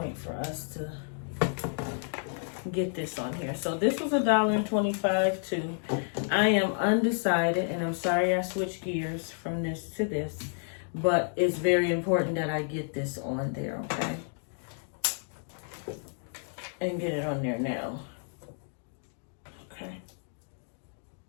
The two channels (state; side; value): silent; right; 57 dB below the other